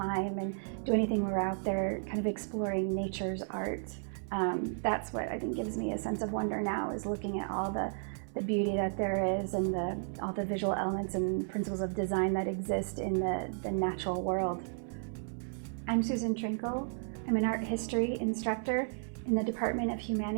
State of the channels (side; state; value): left; silent; 55 dB below the other